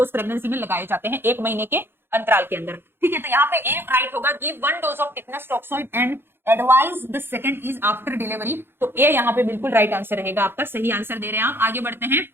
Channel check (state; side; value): late; left; 0.11 ms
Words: प्रेगनेंसी में लगाए जाते हैं 1 महीने के अंतराल के अंदर। ठीक है, तो यहाँ पे ए राइट होगा, give 1 dose of tetanus toxoid and advise the second is after delivery. तो ए यहाँ पे बिल्कुल राइट आंसर रहेगा आपका, सही आंसर दे रहे हैं आप। आगे बढ़ते हैं